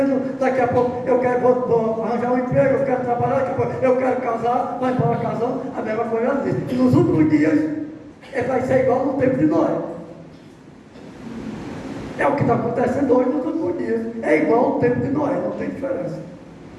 daqui a pouco eu quero vou arranjar um emprego, eu quero trabalhar, daqui a pouco eu quero casar, vai embora casando, a mesma coisa assim. E nos últimos dias vai ser igual no tempo de Noé. É o que está acontecendo hoje nos últimos dias. É igual ao tempo de Noé, não tem diferença.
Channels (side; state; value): both; identical; correlation 1.00